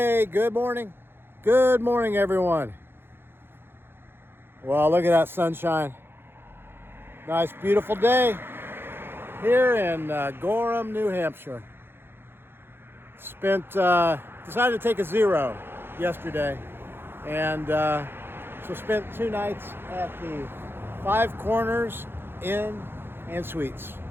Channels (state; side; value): late; left; 0.11 ms